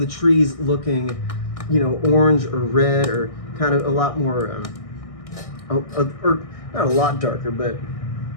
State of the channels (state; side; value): late; right; 1.6 ms